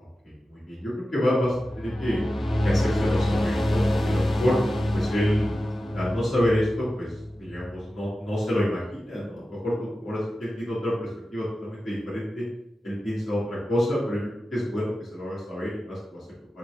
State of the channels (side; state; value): both; normal; correlation 0.93